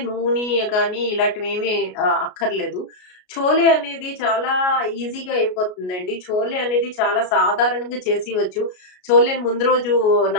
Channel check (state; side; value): late; right; 33 ms